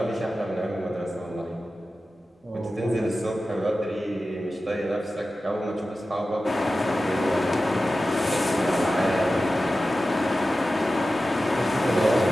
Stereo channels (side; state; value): both; normal; correlation 0.94